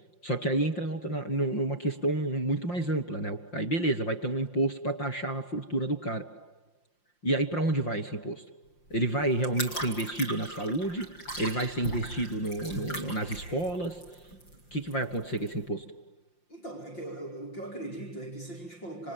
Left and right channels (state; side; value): late; right; 5.7 ms